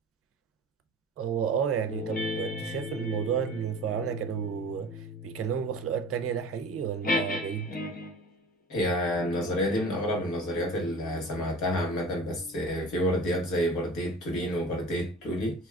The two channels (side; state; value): both; normal; correlation 0.40